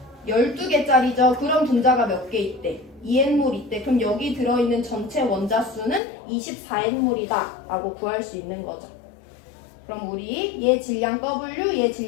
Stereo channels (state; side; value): drops out; right; at 6.0 s